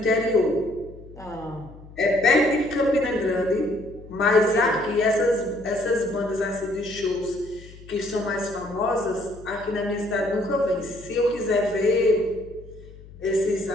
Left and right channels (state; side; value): noise; left; hum, 19 dB below the sound